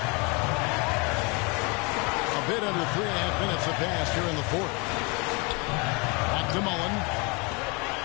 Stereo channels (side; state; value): right; quieter; 30.0 dB